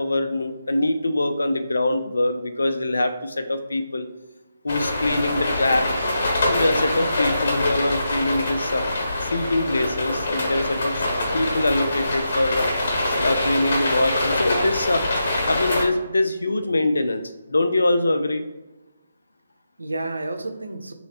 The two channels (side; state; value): both; inverted; correlation -0.87